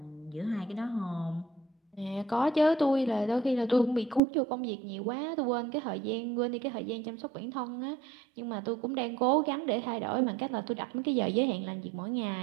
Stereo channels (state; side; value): drops out; left; at 4.2 s